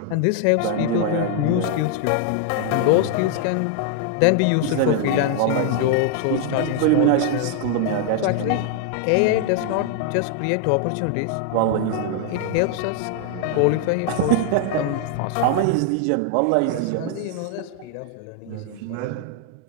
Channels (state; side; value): different; both; correlation 0.00